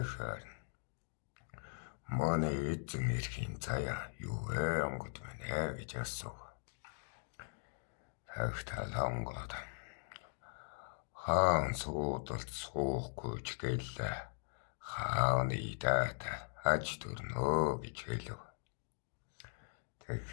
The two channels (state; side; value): silent; right; digital silence